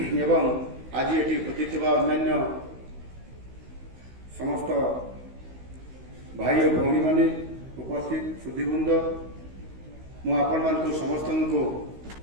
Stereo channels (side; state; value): left; late; 16 ms